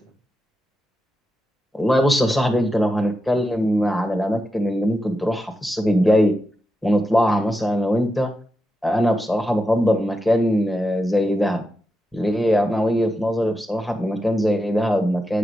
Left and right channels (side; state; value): both; normal; correlation 0.88